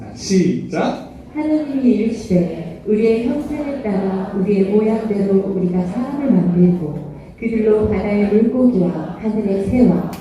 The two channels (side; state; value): both; identical; correlation 1.00